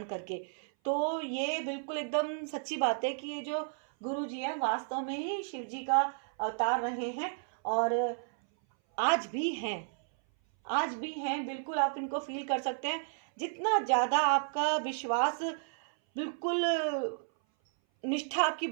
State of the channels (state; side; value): silent; left; 56 dB below the other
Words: करके। तो ये बिल्कुल एकदम सच्ची बात है कि ये जो गुरु जी हैं वास्तव में ही शिव जी का अवतार रहे हैं और आज भी हैं। आज भी हैं, बिल्कुल आप इनको फील कर सकते हैं। जितना ज़्यादा आपका विश्वास, बिल्कुल निष्ठा आपकी